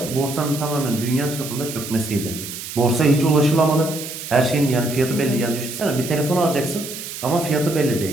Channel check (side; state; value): right; noise; hiss, 9 dB below the sound